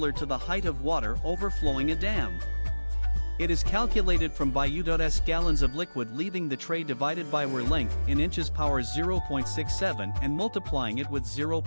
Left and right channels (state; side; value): inverted; both; correlation -1.00